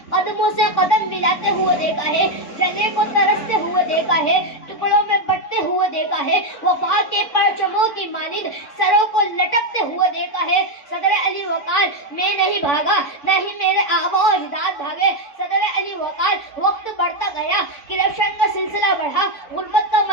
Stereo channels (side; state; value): right; late; 4.5 ms